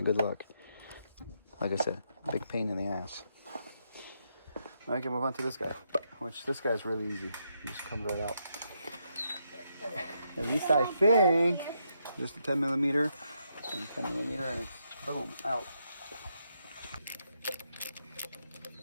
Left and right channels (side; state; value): both; inverted; correlation -0.79